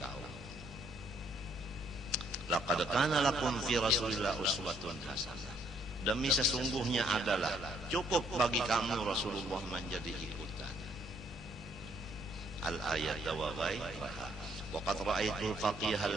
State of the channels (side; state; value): both; normal; correlation 0.68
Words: kaum. Laqad kana lakum fi Rasulillah uswatun hasanah. Demi sesungguhnya adalah cukup bagi kamu Rasulullah menjadi ikutan. Al-ayat wa ghairuha. Waqad ra'aitu al-faqih